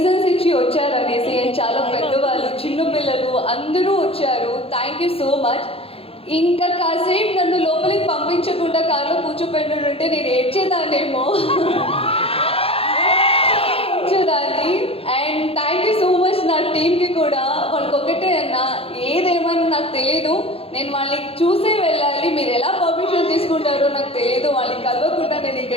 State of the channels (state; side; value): late; right; 0.27 ms